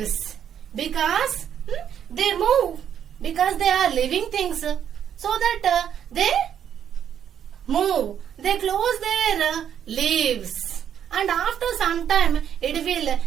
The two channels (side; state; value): left; quieter; 9.1 dB